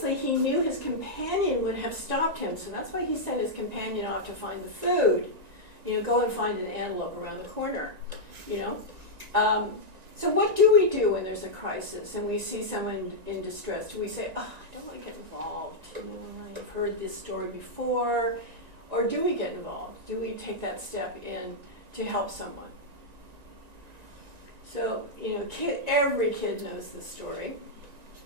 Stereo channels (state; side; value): late; left; 1.9 ms